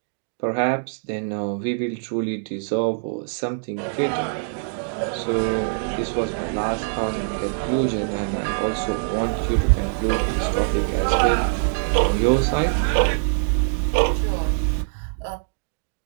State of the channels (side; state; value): left; silent; digital silence